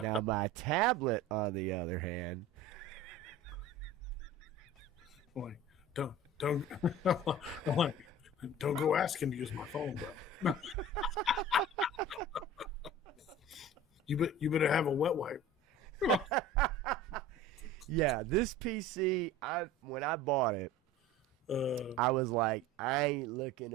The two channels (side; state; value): both; normal; correlation 0.38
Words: my tablet, on the other hand... Boy, don't go asking to use my phone, bro. You better have a wet wipe. Yeah, this PC, when I bought it, I was like, I ain't looking